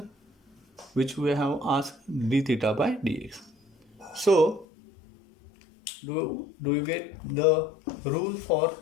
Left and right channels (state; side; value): drops out; right; at 4.7 s